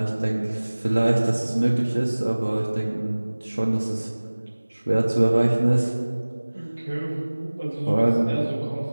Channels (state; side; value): inverted; both; correlation -1.00